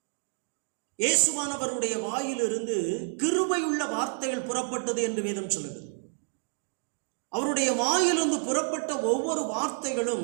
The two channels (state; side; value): silent; left; digital silence